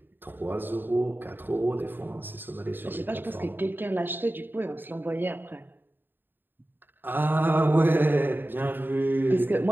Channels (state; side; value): late; left; 0.095 ms